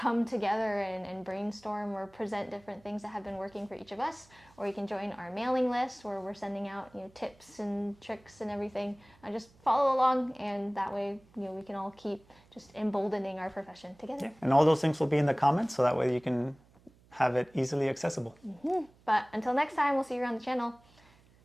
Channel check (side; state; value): right; noise; hum, 29 dB below the sound